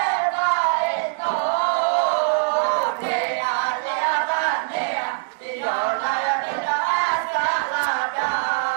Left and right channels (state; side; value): silent; left; 63 dB below the other